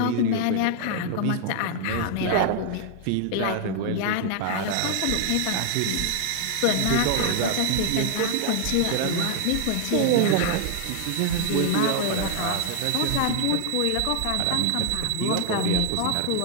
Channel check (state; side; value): different; both; correlation 0.00